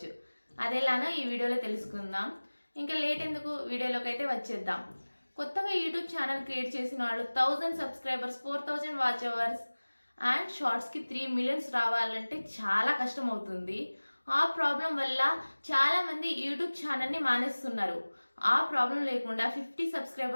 అదెలానో ఈ వీడియోలో తెలుసుకుందాం. ఇంకా లేట్ ఎందుకు, వీడియోలోకి అయితే వచ్చేద్దాం. కొత్తగా యూట్యూబ్ ఛానల్ క్రియేట్ చేసిన వాళ్ళు 1000 సబ్స్క్రైబర్స్, 4000 వాచ్ అవర్స్ అండ్ షార్ట్స్కి 3 మిలియన్స్ రావాలంటే చాలా కష్టం అవుతుంది. ఆ ప్రాబ్లం వల్ల చాలామంది యూట్యూబ్ ఛానల్ని మానేస్తున్నారు. ఆ ప్రాబ్లం లేకుండా 50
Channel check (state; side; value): inverted; both; correlation -1.00